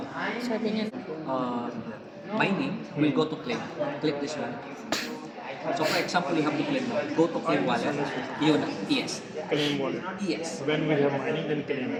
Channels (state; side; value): identical; both; correlation 1.00